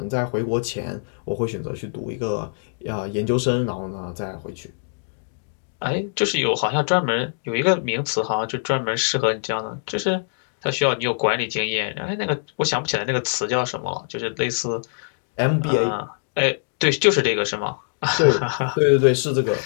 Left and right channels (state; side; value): silent; right; digital silence